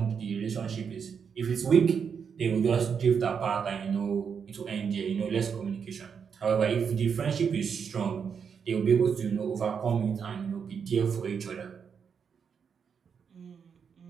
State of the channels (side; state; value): left; quieter; 6.7 dB